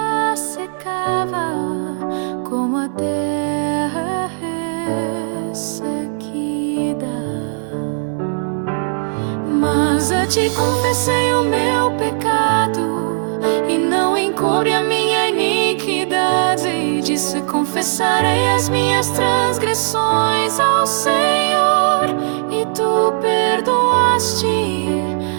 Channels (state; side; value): silent; left; 66 dB below the other